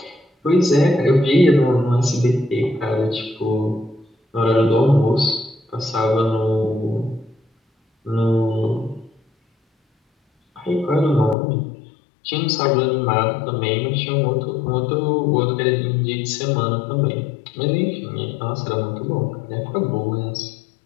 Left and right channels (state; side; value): drops out; right; at 11.4 s